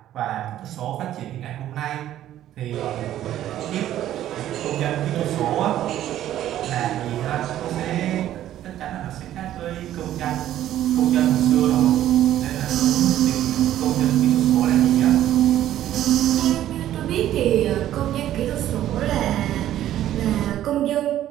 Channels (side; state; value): left; quieter; 12.4 dB